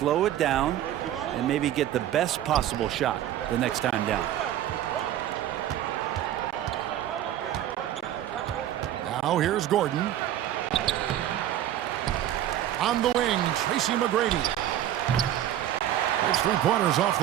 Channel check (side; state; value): left; quieter; 12.0 dB